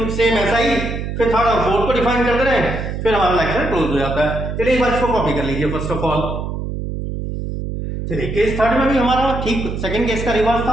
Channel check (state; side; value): noise; right; hum, 5 dB below the sound